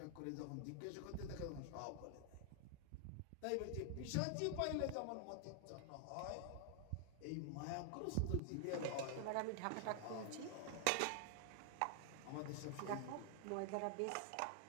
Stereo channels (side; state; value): both; different; correlation 0.00